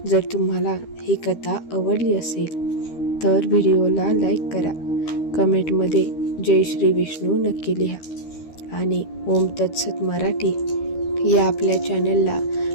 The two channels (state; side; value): late; right; 13 ms